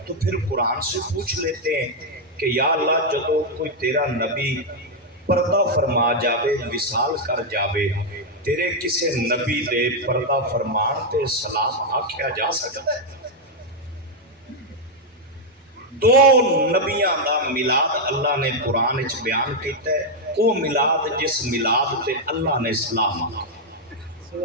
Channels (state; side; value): normal; both; correlation 0.00